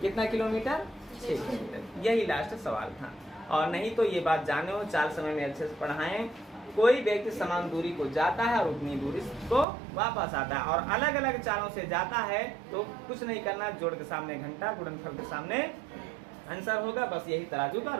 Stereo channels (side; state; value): left; drops out; at 9.7 s